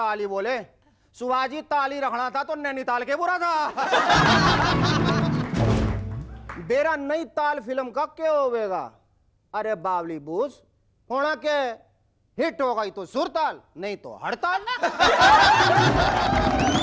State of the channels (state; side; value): identical; both; correlation 1.00